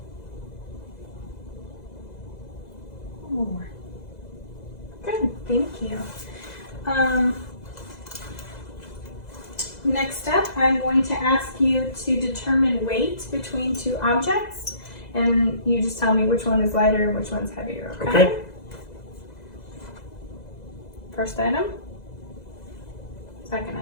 One more. Good, thank you. Next up, I'm going to ask you to determine weight between two objects, and you just tell me which one is lighter and which one's heavier, okay? Okay. First item. Second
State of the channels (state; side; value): late; right; 2.0 ms